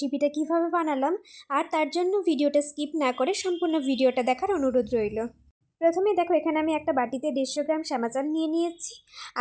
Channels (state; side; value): identical; both; correlation 1.00